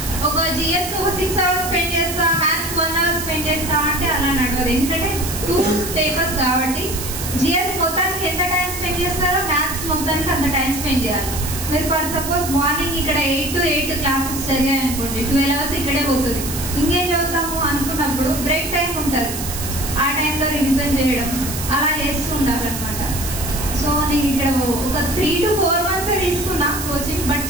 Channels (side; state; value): right; noise; hiss, 7 dB below the sound